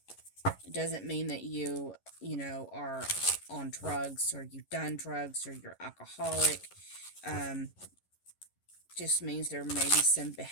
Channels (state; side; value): late; right; 11 ms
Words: It doesn't mean that you know, are on drugs or you've done drugs or you're alcoholic. Just means there may be some